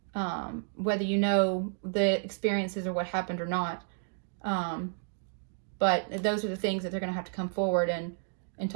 whether you know the experiences or what happened or not. But those are the things that they're going to have to come forward and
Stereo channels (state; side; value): silent; left; digital silence